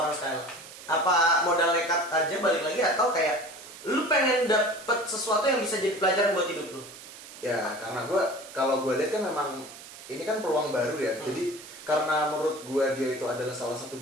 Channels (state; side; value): noise; right; hiss, 16 dB below the sound